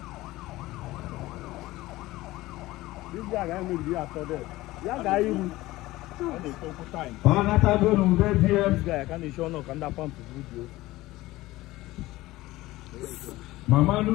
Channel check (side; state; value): right; quieter; 18.0 dB